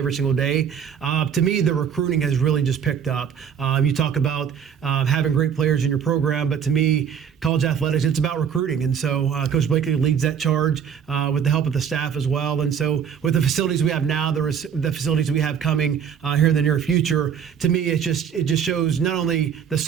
single day. To me, the recruiting has really just picked up. You talk about having great players in your program, but to me, college athletics, it's about recruiting. And so Coach Blakely leads that charge with the help of the staff as well. And so with the facilities we have now, the facilities we have coming here in the near future, to me, it just shows not only the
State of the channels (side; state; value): left; quieter; 7.9 dB